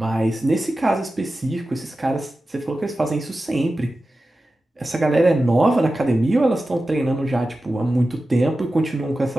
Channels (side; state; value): both; normal; correlation 0.94